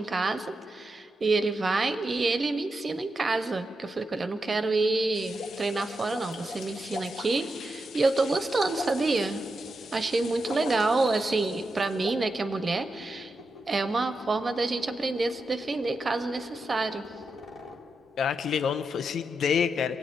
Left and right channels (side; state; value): both; normal; correlation 0.87